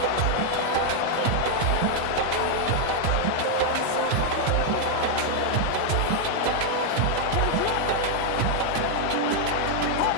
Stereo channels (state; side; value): different; both; correlation 0.00